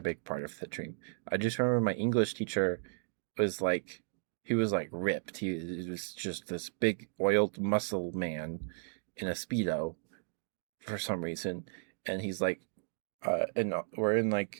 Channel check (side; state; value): left; silent; digital silence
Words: big part of the dream. I just remember my English teacher was like, he was like ripped. He was just this big oiled muscle man in a speedo for some reason, and he's like, and we're in